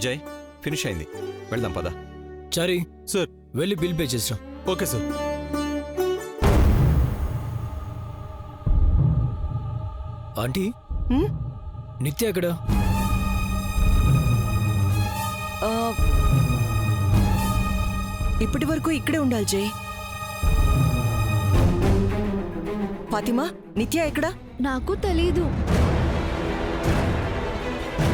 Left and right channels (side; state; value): both; identical; correlation 1.00